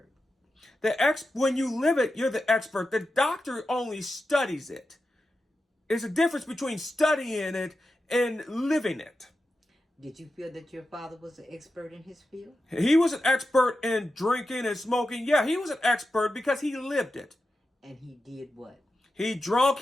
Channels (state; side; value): normal; both; correlation 0.91